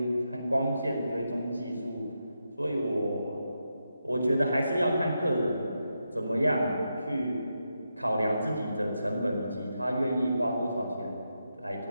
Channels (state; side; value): inverted; both; correlation -0.85